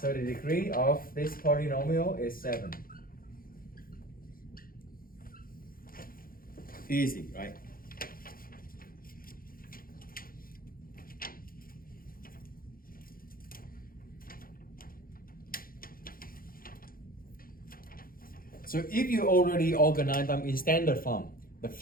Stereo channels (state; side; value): late; right; 0.42 ms